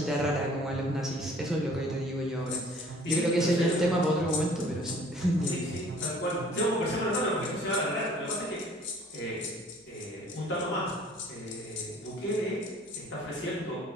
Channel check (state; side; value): normal; both; correlation 0.53